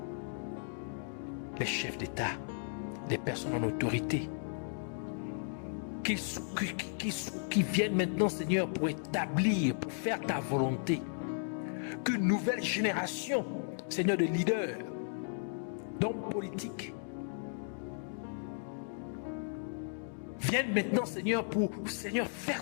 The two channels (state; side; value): silent; right; digital silence